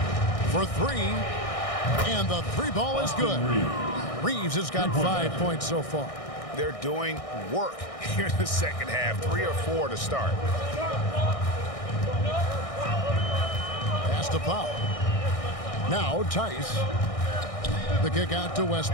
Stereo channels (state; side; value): late; right; 1.6 ms